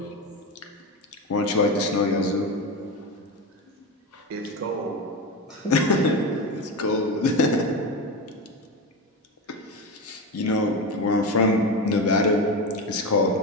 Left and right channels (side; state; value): both; normal; correlation 0.20